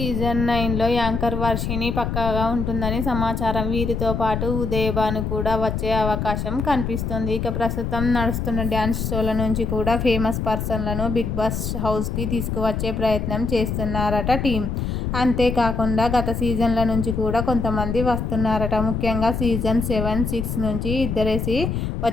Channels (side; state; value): left; noise; rumble, 2 dB below the sound